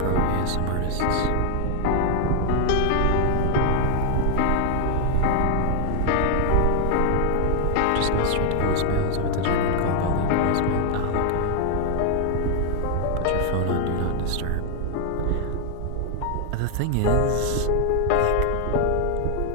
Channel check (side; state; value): both; different; correlation 0.00